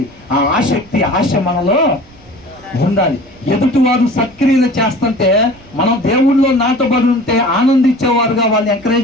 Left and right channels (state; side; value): noise; right; rumble, 26 dB below the sound